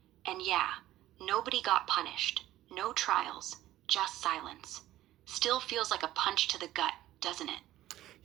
And yeah, nobody got punished. No trials, just silence. Still feels like a punch to the gut, doesn't it?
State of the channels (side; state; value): left; quieter; 14.5 dB